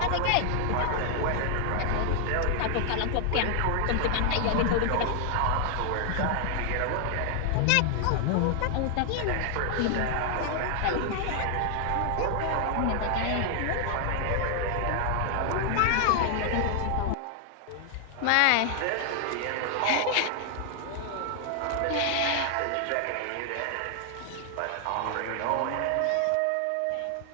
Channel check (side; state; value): both; different; correlation 0.00